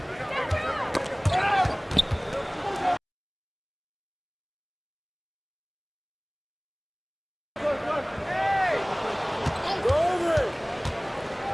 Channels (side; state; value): both; identical; correlation 1.00